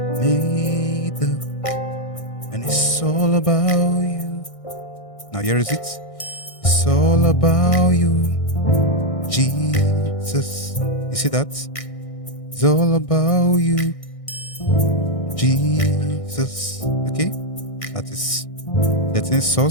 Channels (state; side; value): late; right; 1.6 ms